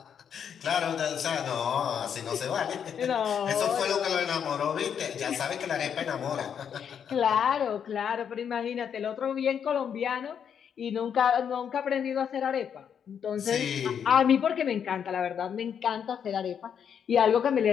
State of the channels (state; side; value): quieter; right; 7.9 dB